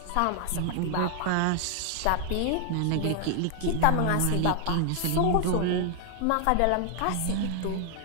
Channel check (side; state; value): both; different; correlation 0.00